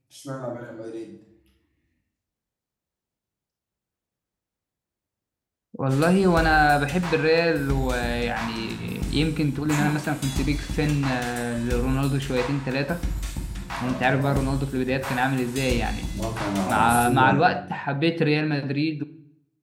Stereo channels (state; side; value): identical; both; correlation 1.00